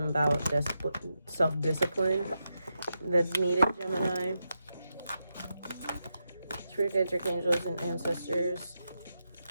about self-discipline that's needed, Gemini. Spirit guides, archangels, and ancestors.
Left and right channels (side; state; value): both; inverted; correlation -0.86